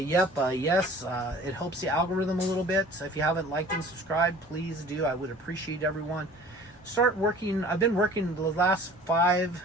helps the algorithm a little bit. So if you haven't liked and subscribed, please do. I would appreciate everyone. Start working. I've been working the last 5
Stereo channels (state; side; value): normal; both; correlation 0.46